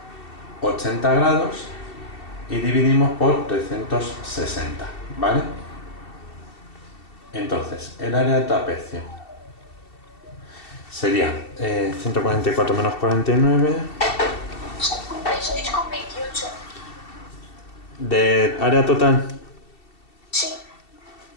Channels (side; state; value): right; late; 2.7 ms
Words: 80 grados y dividimos por 360, ¿vale? Entonces, el área del trapecio sería 144 menos 49... 56,28. ¿De área total? Sí.